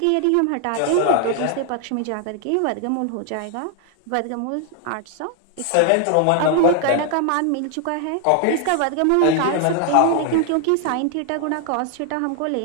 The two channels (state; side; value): different; both; correlation 0.00